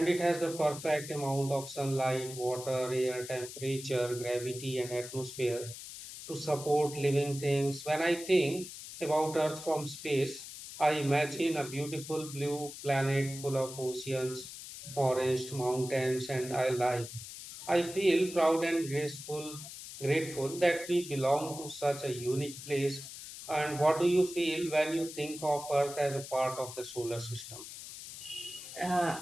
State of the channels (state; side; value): noise; left; hiss, 12 dB below the sound